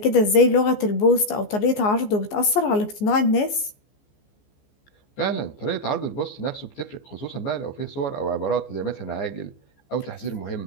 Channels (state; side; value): late; right; 14 ms